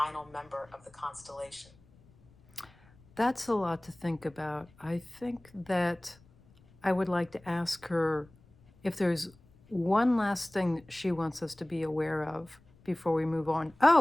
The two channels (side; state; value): left; noise; rumble, 28 dB below the sound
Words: member of the constellation? That's a lot to think about. I think that I would like to ask her if there's one last thing that she wants us to be aware of before we move on.